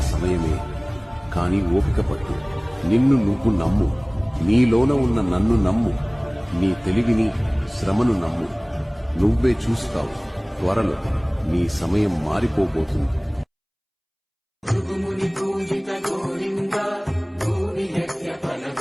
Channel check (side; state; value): both; identical; correlation 1.00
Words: సమయమే, కాని ఓపిక పట్టు. నిన్ను నువ్వు నమ్ము. నీలోన ఉన్న నన్ను నమ్ము. నీ తెలివిని, శ్రమను నమ్ము. నువ్వే చూస్తావు, త్వరలో నీ సమయం మారిపోబోతుంది. భృగుముని పూజిత గోవింద, భూమి యజ్ఞ ఫల